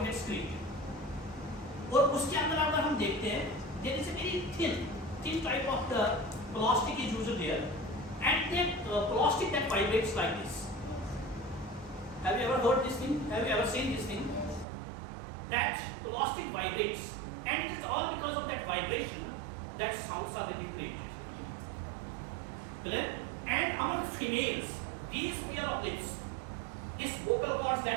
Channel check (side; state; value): left; drops out; at 14.7 s